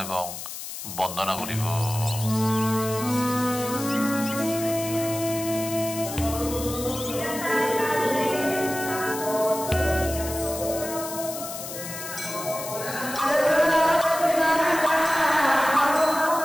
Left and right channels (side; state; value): left; noise; hiss, 9 dB below the sound